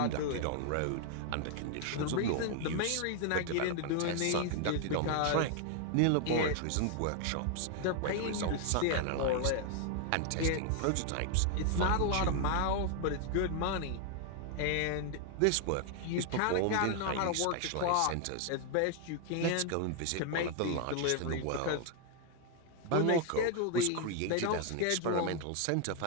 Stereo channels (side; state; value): both; different; correlation 0.00